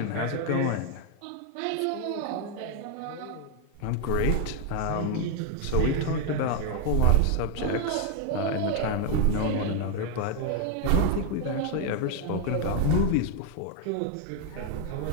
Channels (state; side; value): different; both; correlation 0.00